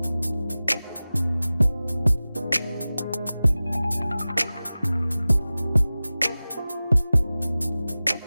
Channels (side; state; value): both; inverted; correlation -0.97